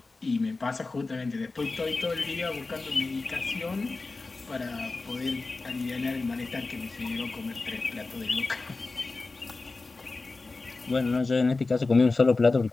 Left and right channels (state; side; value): quieter; right; 3.6 dB